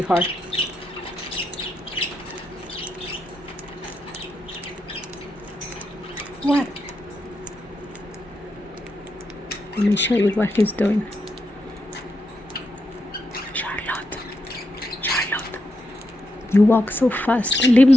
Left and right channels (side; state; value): both; normal; correlation 0.84